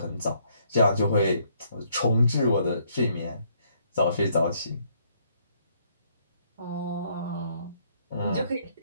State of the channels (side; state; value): both; inverted; correlation -0.69